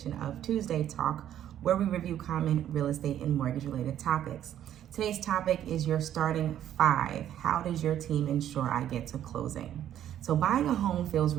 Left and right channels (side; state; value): left; quieter; 11.0 dB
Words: of Tuesday Talk, where we review common real estate and mortgage related topics. Today's topic is your starting five. How does your team ensure I get to closing? So buying a home feels